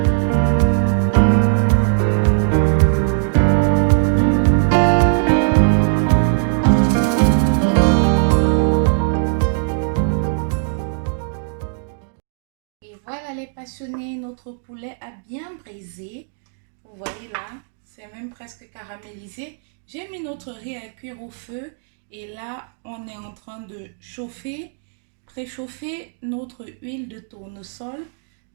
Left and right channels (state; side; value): silent; left; digital silence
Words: Et voilà les passionnés, notre poulet a bien brisé. Vous voyez là, c'est même presque caramélisé. J'ai mis notre riz à cuire au feu et là, on est en train de préchauffer notre huile de tournesol